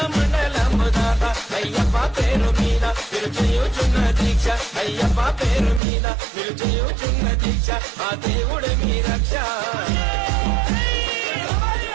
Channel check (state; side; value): drops out; left; at 5.8 s